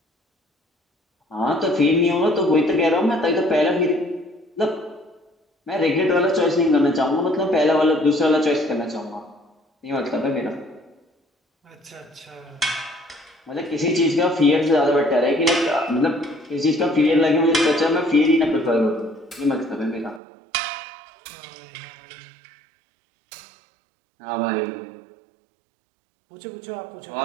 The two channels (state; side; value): drops out; left; at 20.2 s